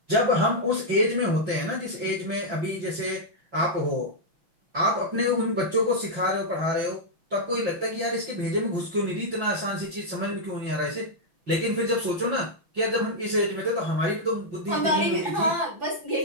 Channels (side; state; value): left; late; 6.0 ms